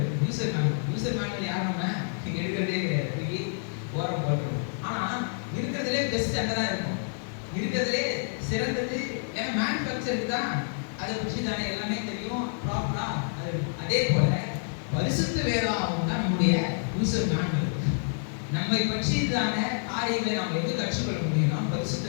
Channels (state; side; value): silent; right; digital silence